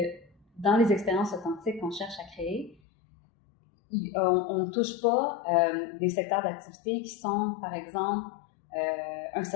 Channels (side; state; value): right; drops out; at 2.8 s